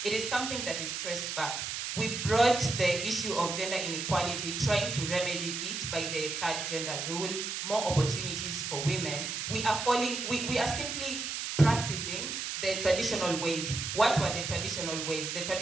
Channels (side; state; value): right; noise; hiss, 4 dB below the sound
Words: It is something that is traced back. We brought the issue of gender inequality, trying to remedy it by the third gender rule, more opportunities for women. We are simply practicing the traditional ways. What were the traditional ways? The